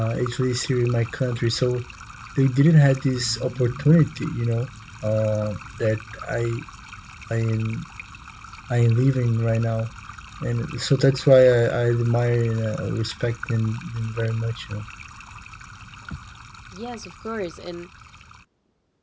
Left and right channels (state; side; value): identical; both; correlation 1.00